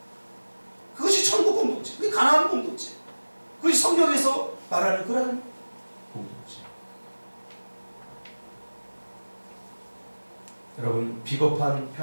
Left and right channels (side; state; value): both; inverted; correlation -1.00